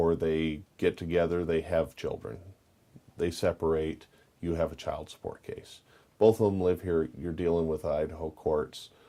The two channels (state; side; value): identical; both; correlation 1.00